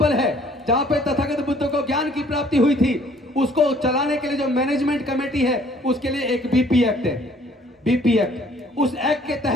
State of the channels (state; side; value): normal; both; correlation 0.59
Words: है, जहां पे तथागत बुद्ध को ज्ञान की प्राप्ति हुई थी, उसको चलाने के लिए जो मैनेजमेंट कमेटी है, उसके लिए एक BP एक्ट है, BP एक्ट। उस एक्ट के